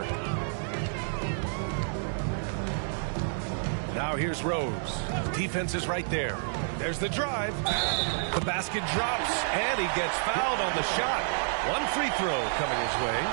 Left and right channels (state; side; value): silent; left; digital silence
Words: Now here's Rose. Defense is right there. There's the drive. The basket drops, and he gets fouled on the shot. 1 free throw coming his way.